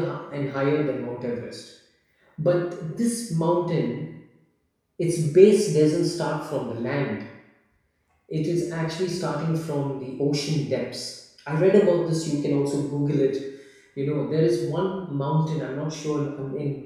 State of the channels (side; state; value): both; identical; correlation 1.00